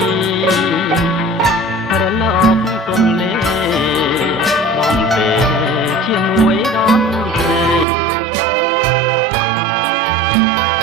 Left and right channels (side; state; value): left; drops out; at 7.9 s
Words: រលកទុំលេបងពេជាមួយដល់ស្រីបងឡង